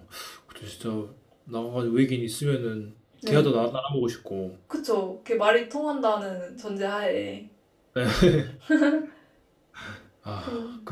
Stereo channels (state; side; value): identical; both; correlation 1.00